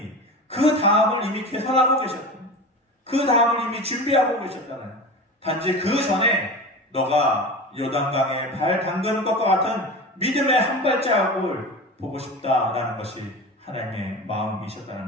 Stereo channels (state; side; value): normal; both; correlation 0.30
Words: 그 다음을 이미 계산하고 계셨거든요. 그 다음을 이미 준비하고 계셨잖아요. 단지 그 전에 너가 요단강에 발 담그는 것과 같은 믿음의 한 발자국을 보고 싶다라는 것이 하나님의